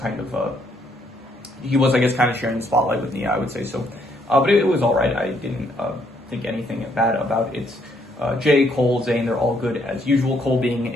of he was, I guess, kind of sharing the spotlight with Nia, I would say. So, but it was all right. I didn't think anything bad about it. Jay, Cole, Zane, they're all good as usual. Cole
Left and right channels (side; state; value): both; normal; correlation 0.71